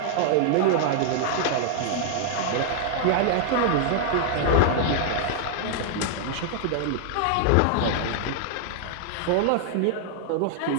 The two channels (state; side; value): different; both; correlation -0.01